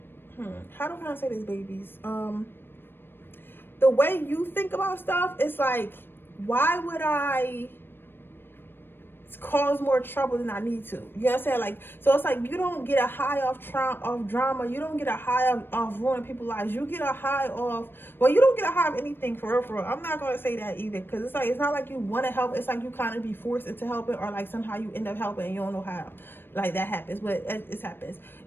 how do I say this, babies? The way you think about stuff, it's like, why would I cause more trouble than I need to? You know what I'm saying? Like, so it's like, you don't get a high off drama. You don't get a high off ruining people's lives. You get a high off, well, you don't get a high of anything, for real. I'm not going to say that either, because it's like, it's not like you want to help. It's like you kind of be forced into helping, or like somehow you end up helping and you don't know how. Like, that happens, but it happens.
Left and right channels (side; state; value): right; late; 0.10 ms